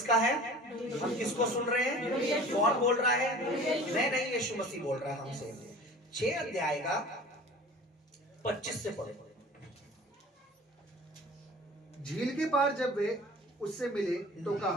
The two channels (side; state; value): both; normal; correlation 0.42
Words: है? हम किसको सुन रहे हैं? कौन बोल रहा है? मैं नहीं, यीशु मसीह बोल रहा है हमसे। 6 अध्याय का 25 से पढ़ो। झील के पार जब वे उससे मिले तो